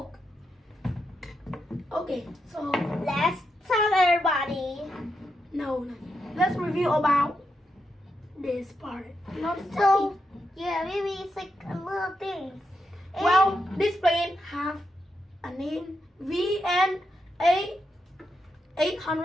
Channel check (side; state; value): both; normal; correlation 0.84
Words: Okay, so Let's tell everybody. no. Let's review about this part. Not So yeah, maybe it's like a little things. And well, this plane have a name VNA